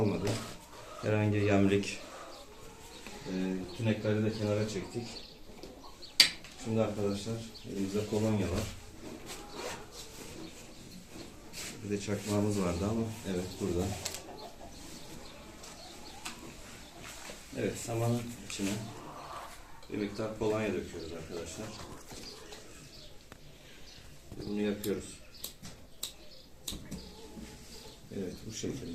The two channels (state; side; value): identical; both; correlation 1.00